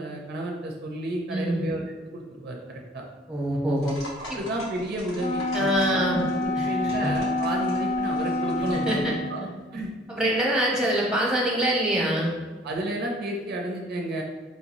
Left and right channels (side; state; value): both; normal; correlation 0.54